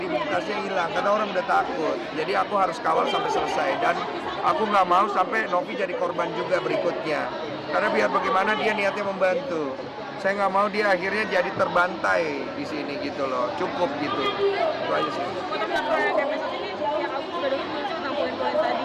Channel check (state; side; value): identical; both; correlation 1.00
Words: hilang karena orang udah takut. Jadi aku harus kawal sampai selesai, dan aku nggak mau sampai Novi jadi korban juga berikutnya, karena biar bagaimana dia niatnya membantu. Saya nggak mau dia akhirnya jadi terbantai di sini gitu loh. Cukup gitu, itu aja sih. Oh, tapi laporan DPS ini yang aku sudah dengar muncul tentang poin-poin tadi.